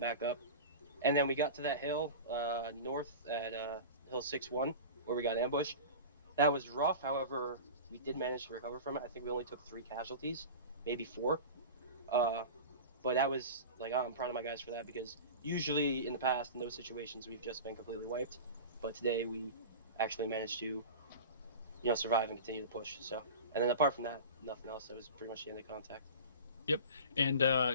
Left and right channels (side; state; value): both; inverted; correlation -0.32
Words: up. And then we got to that hill north at Hill 6-1, where we got ambushed. That was rough, however, we did manage to recover from it. I think we only took 3 casualties, maybe 4. But that was, like, I'm proud of my guys for that, because usually in the past, in those situations, we've just been completely wiped. But today we actually managed to, survive and continue to push. So, and then apart from that, nothing else. That was pretty much the end of contact. Yep.